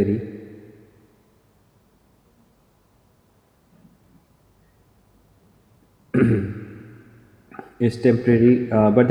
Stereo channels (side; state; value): both; identical; correlation 1.00